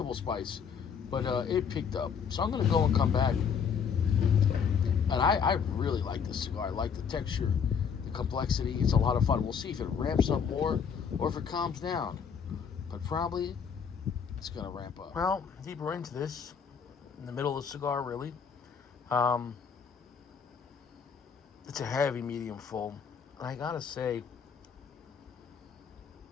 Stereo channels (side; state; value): right; quieter; 6.8 dB